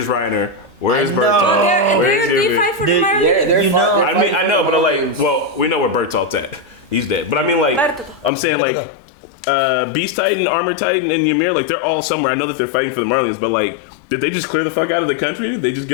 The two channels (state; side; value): drops out; right; at 8.3 s